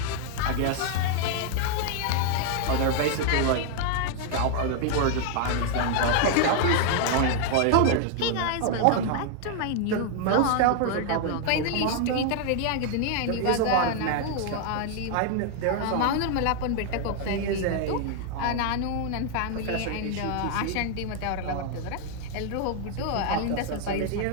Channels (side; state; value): both; different; correlation 0.00